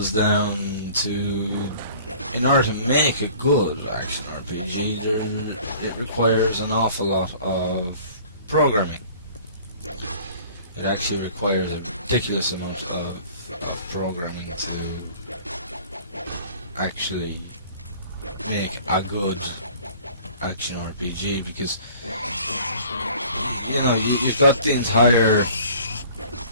down to, in order to make a good action RPG, it requires an awful lot of programming. It actually requires a ridiculous amount of programming to actually make a good action RPG, because, you know, you've got the entire,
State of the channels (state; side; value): inverted; both; correlation -0.49